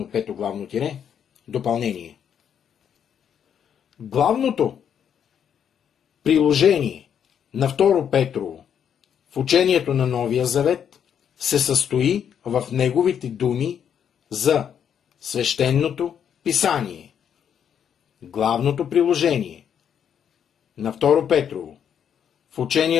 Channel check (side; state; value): right; quieter; 8.5 dB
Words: пето главно тире. Допълнение. Главното приложение на 2 Петрово в учението на Новия Завет се състои в неговите думи за свещеното писание. Главното приложение на 2 Петрово в